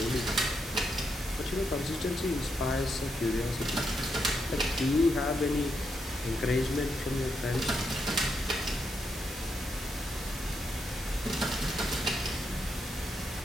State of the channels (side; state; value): both; normal; correlation 0.81